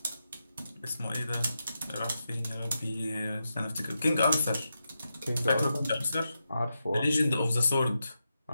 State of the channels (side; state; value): both; inverted; correlation -0.87